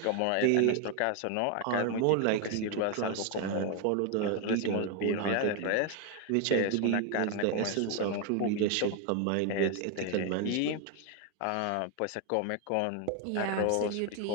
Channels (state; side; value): different; both; correlation 0.01